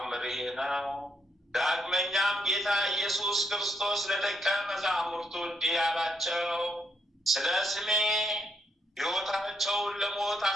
ይህ ነው። ዳግመኛም ጌታ ኢየሱስ ክርስቶስ ለደቀ መዛሙርቱ እንዲህ አላቸው፣ ስለ ስሜ ሕይወታቸውን ለሞት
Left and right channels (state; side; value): normal; both; correlation 0.76